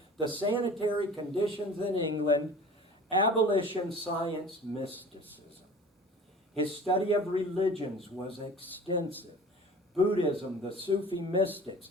the sanitary conditions in England, abolition, science, mysticism. His study of religions was extensive. Buddhism, the Sufi mystics,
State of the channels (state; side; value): normal; both; correlation 0.42